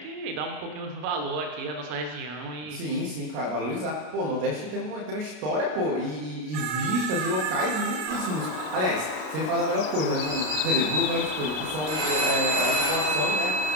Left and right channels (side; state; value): left; late; 33 ms